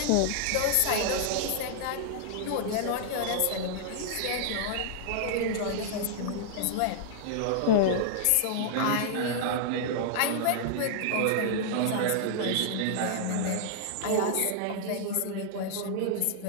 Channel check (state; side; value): different; both; correlation -0.01